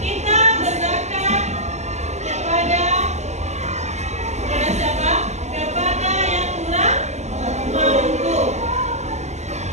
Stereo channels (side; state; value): left; late; 0.33 ms